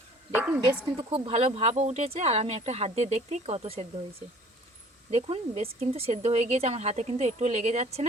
দেখুন বেশ কিন্তু খুব ভালো ভাপও উঠেছে, আর আমি একটা হাত দিয়ে দেখতেই কত সেদ্ধ হয়েছে। দেখুন বেশ কিন্তু সেদ্ধ হয়ে গিয়েছে, আমার হাতে কিন্তু একটু লেগে যাচ্ছে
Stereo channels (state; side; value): normal; both; correlation 0.52